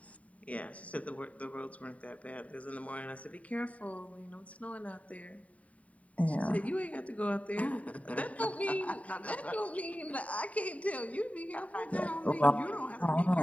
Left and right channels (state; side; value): late; right; 0.068 ms